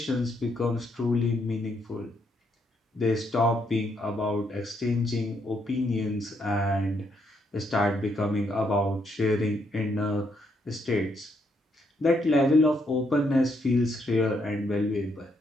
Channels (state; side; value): normal; both; correlation 0.75